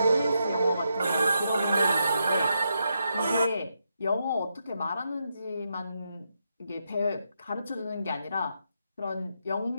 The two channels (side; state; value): both; inverted; correlation -0.82